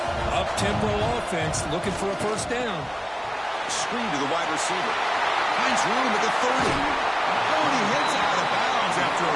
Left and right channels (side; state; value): both; identical; correlation 1.00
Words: Up-tempo offense looking for a first down. Screen to the wide receiver. Finds room at the 30. Oh, he hits out of bounds after